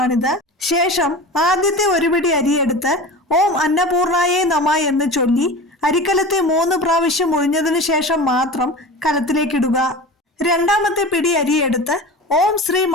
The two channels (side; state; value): both; normal; correlation 0.33